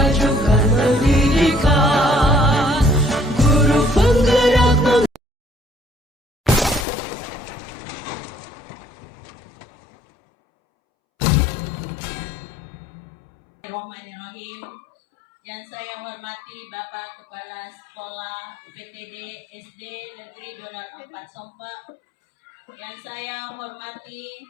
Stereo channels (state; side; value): drops out; right; at 6.9 s